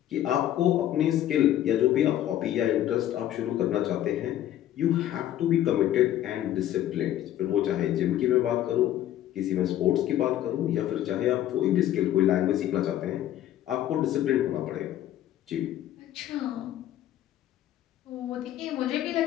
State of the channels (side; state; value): right; quieter; 12.4 dB